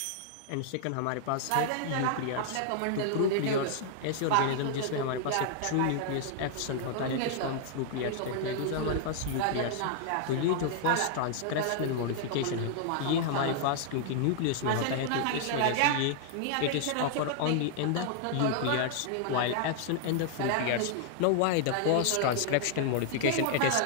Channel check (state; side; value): different; both; correlation 0.00